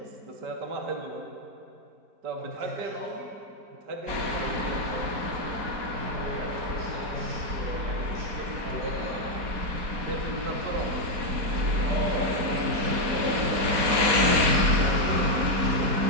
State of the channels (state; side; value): late; left; 4.2 ms